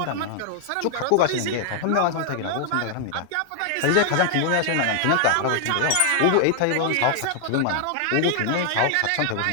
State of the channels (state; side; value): different; both; correlation 0.00